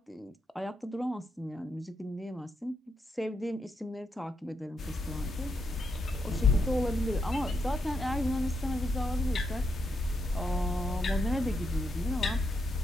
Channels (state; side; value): normal; both; correlation 0.81